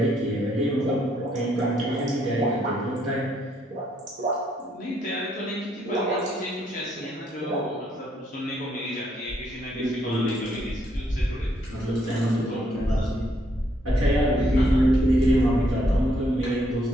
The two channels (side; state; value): both; normal; correlation 0.72